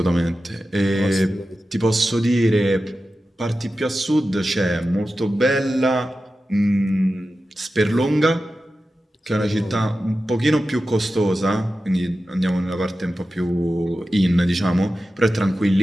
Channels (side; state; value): both; normal; correlation 0.93